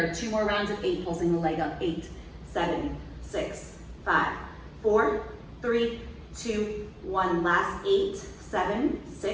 2 more rounds of 8, pulsing the leg up. 8, 7, 6, 5, 4, 3, 2, 1. Last 8, 7,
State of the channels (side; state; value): both; identical; correlation 1.00